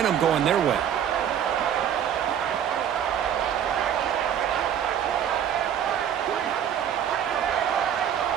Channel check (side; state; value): left; quieter; 9.3 dB